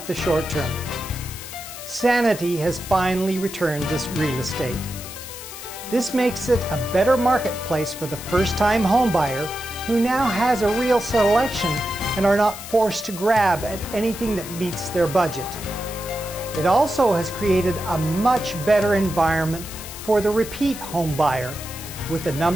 the short term. Sanity has finally returned to real estate. This makes it a better marketplace for the first-time homebuyer who now has a real selection and are not forced to grab at anything that meets their budget. It also has created a much better environment for the repeat home buyer, with the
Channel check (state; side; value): noise; left; hiss, 12 dB below the sound